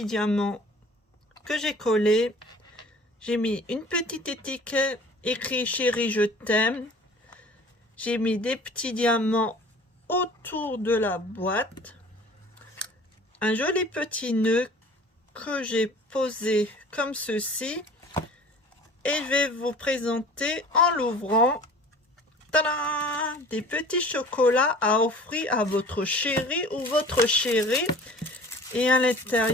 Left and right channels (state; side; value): normal; both; correlation 0.45